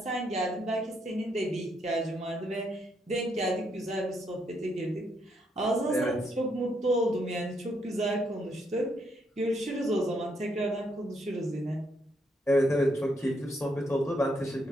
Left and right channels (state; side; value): normal; both; correlation 0.75